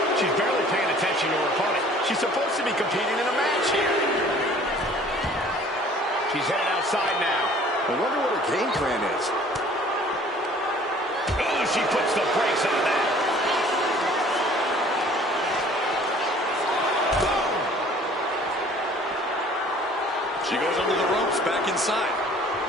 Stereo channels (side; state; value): both; normal; correlation 0.52